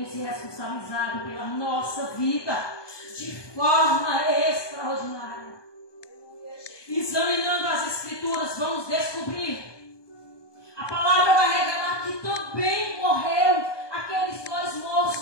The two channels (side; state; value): right; late; 1.2 ms